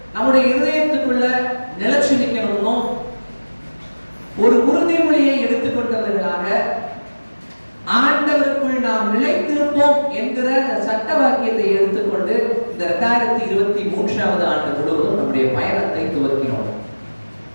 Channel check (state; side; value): inverted; both; correlation -1.00